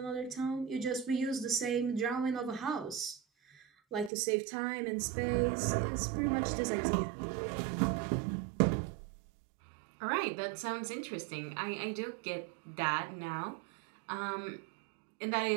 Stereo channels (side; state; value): left; drops out; at 4.1 s